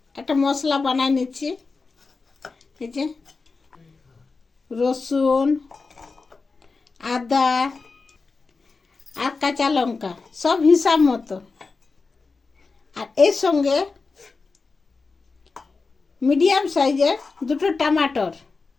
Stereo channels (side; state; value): right; quieter; 4.3 dB